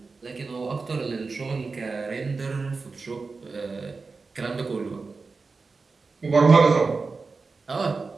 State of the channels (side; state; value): left; quieter; 4.3 dB